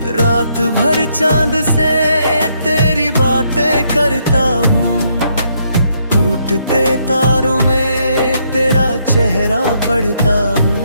रात भर चांद से तेरी बातें करता हूँ, टूटते तारों में तेरा चेहरा पढ़ता हूँ।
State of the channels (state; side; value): inverted; both; correlation -0.74